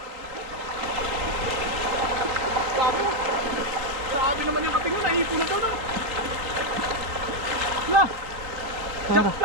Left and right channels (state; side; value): late; left; 3.7 ms